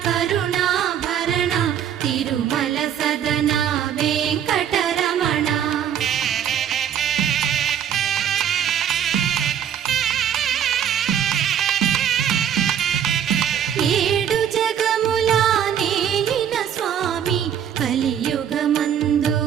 కరుణాభరణ తిరుమల సదనా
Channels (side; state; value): left; quieter; 9.3 dB